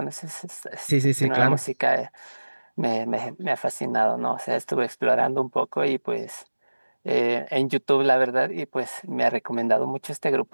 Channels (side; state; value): both; inverted; correlation -1.00